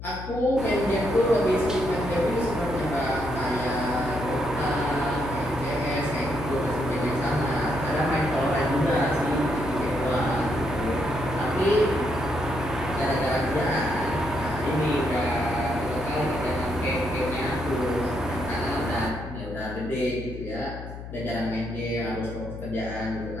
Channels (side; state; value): left; noise; hum, 10 dB below the sound